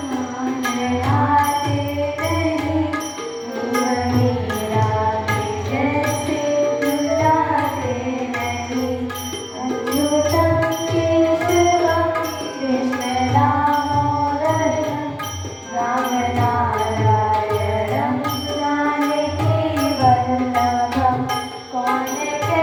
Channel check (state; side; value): identical; both; correlation 1.00